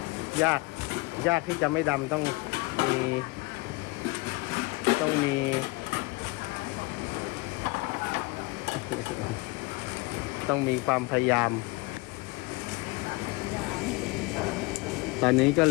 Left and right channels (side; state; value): right; quieter; 23.9 dB